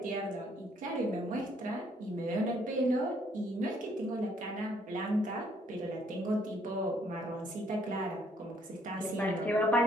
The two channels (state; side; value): normal; both; correlation 0.66